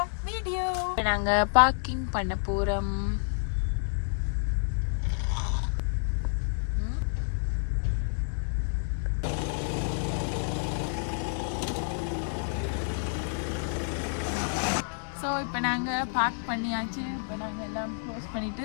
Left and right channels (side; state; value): right; silent; digital silence